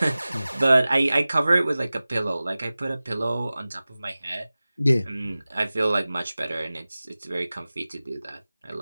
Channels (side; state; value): both; inverted; correlation -0.97